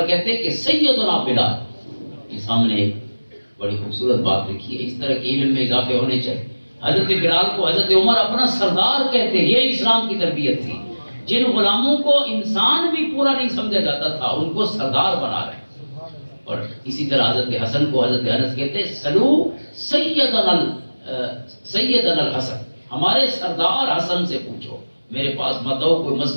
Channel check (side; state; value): both; inverted; correlation -1.00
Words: کہتے کہ سیدنا بلال۔ یہ سامنے ایک بڑی خوبصورت بات لکھی ہے، اس طرح کے علم میں اضافے ہونے چاہیے۔ حضرت بلال کو حضرت عمر اپنا سردار کہتے ہیں، یہ اسلام کی تربیت تھی۔ جن غلاموں کو انسان بھی پورا نہیں سمجھا جاتا تھا ان کو سردار بنا رہے ہیں۔ اور اسی طرح حضرت حسن کو حضرت انس کہتے ہیں سلو سیدنا الحسن، ہمارے سردار حسن سے پوچھو، میرے پاس مت آؤ، کوئی